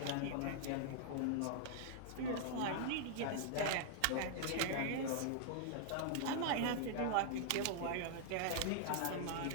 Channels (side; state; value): both; different; correlation -0.01